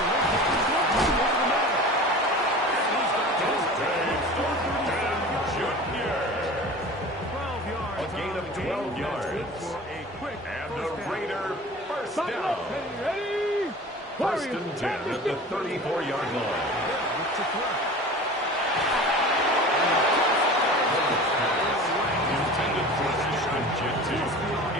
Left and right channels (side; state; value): both; normal; correlation 0.38